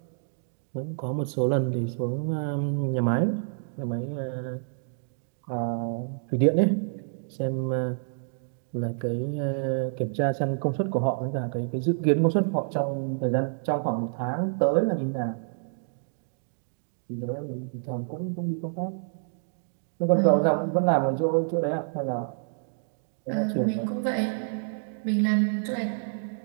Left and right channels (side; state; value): left; silent; digital silence